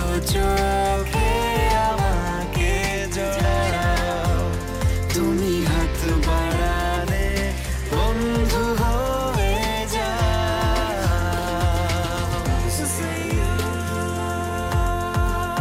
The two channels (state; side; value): identical; both; correlation 1.00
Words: চোখে আমাকে জড়াও। তুমি হাত বাড়ালে বন্ধু হয়ে যাও।